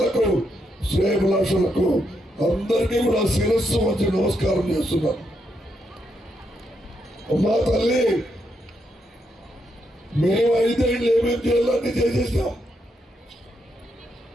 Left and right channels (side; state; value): both; normal; correlation 0.80